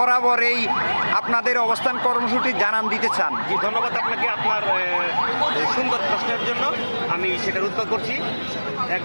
এই আপনাদের অবস্থান কর্মসূচি জানান দিতে চান? জি, ধন্যবাদ আপনাকে আপনার সুন্দর প্রশ্নের জন্য। আমি সেটার উত্তর করছি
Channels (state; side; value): inverted; both; correlation -1.00